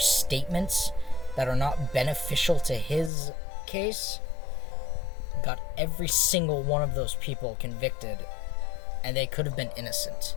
that are not beneficial to his case. Got every single one of those people convicted, and they could have been innocent.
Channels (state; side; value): drops out; right; at 3.1 s